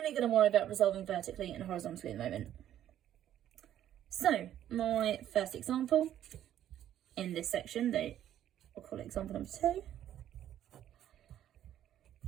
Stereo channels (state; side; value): quieter; left; 11.4 dB